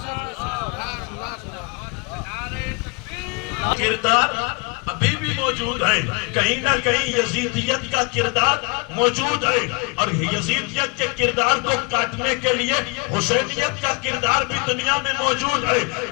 کردار ابھی بھی موجود ہے، کہیں نہ کہیں یزیدیت کا کردار موجود ہے، اور یزیدیت کے کردار کو کاٹنے کے لیے حسینیت کا کردار بھی دنیا میں موجود ہے۔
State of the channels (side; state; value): right; quieter; 29.2 dB